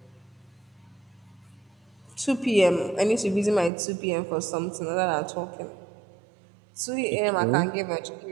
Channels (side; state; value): left; drops out; at 3.7 s